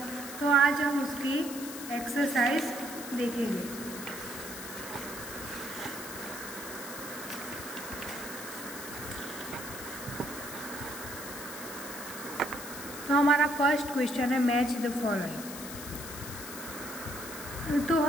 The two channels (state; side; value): noise; left; hiss, 10 dB below the sound